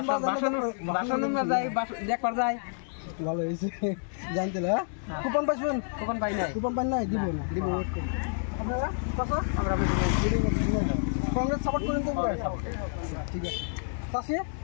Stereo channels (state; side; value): silent; right; digital silence